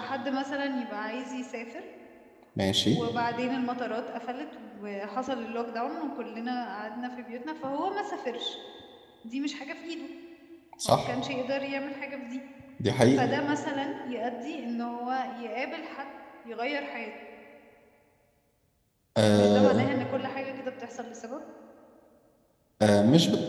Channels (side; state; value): both; identical; correlation 1.00